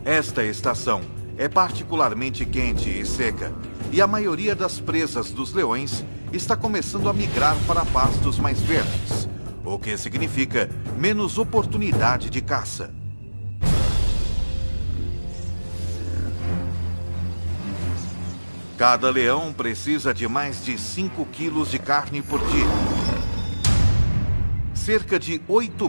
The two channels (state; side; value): inverted; both; correlation -1.00